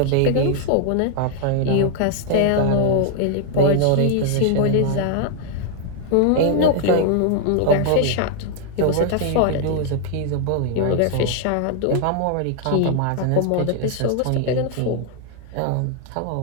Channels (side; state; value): both; different; correlation -0.01